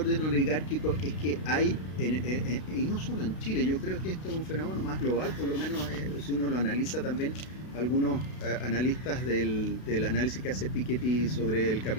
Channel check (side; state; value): right; late; 32 ms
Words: oligárquico es que hay, y no solo en Chile, yo creo que esto es un fenómeno más global, por lo menos si uno lo analiza también. Algunos analistas del análisis que hace Piketty sobre el